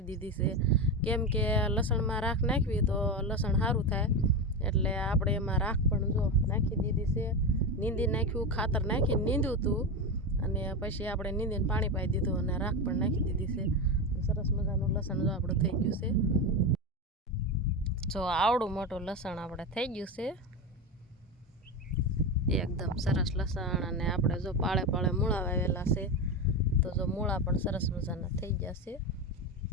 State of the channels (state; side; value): normal; both; correlation 0.17